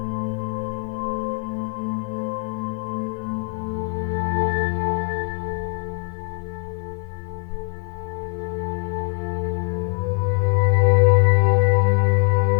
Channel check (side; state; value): right; quieter; 37.2 dB